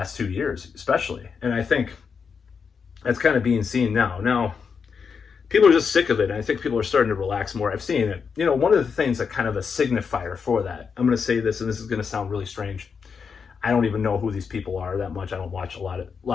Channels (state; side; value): quieter; right; 6.0 dB